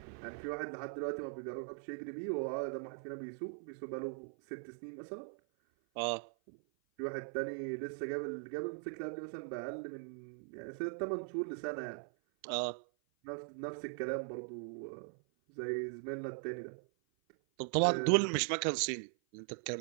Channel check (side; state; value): left; silent; 51 dB below the other